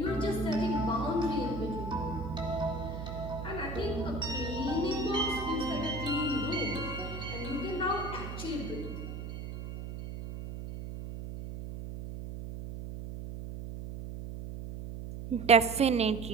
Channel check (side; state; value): right; noise; hum, 8 dB below the sound